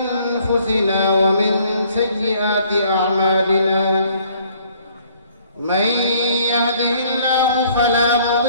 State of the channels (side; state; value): both; inverted; correlation -0.61